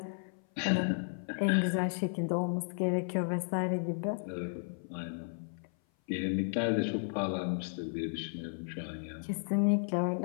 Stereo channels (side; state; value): right; silent; 55 dB below the other